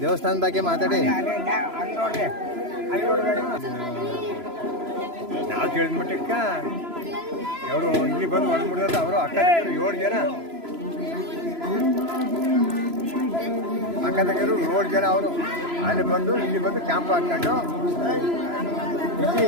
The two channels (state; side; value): late; left; 3.0 ms